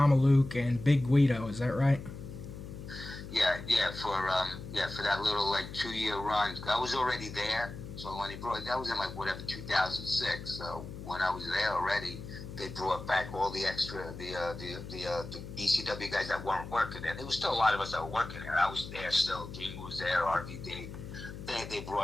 and Big Guido. Is that right? For that little 2-year run, I was already there. So when that was in 2006. So when I was there already, they brought back all the extra the ECW guys that weren't working there. There was still a lot of us that were working there. I was there still. Jim was there. RVD. They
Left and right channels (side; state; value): left; noise; hum, 11 dB below the sound